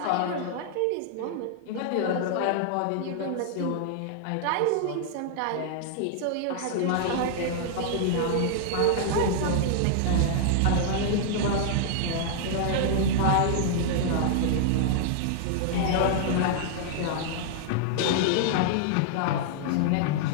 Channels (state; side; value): different; both; correlation -0.01